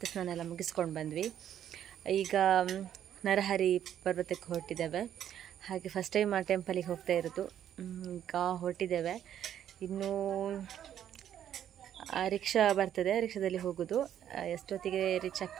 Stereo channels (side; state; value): left; quieter; 10.3 dB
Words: ಸ್ನಾನ ಎಲ್ಲ ಮುಗಿಸ್ಕೊಂಡು ಬಂದ್ವಿ. ಈಗ ನರಹರಿ ಪರ್ವತಕ್ಕೆ ಹೊರಟಿದ್ದೇವೆ. ಹಾಗೆ ಫಸ್ಟ್ ಟೈಮ್ ಆ ಟೆಂಪಲಿಗೆ ಹೋಗ್ತಾ ಇರೋದು. ಈಗ ಹೊರಟಿದ್ದೇವೆ. ಇನ್ನೂ ರಿಕ್ಷಾ ಬರ್ತದೆ, ರಿಕ್ಷಾದಲ್ಲಿ ಹೋಗೋದು. ಎಷ್ಟೊತ್ತಿಗೆ ರೀಚ್